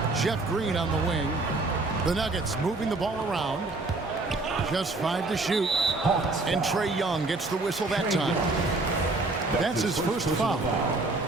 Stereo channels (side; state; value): left; quieter; 3.2 dB